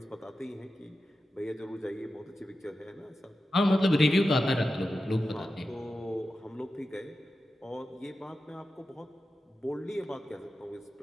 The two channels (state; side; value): normal; both; correlation 0.92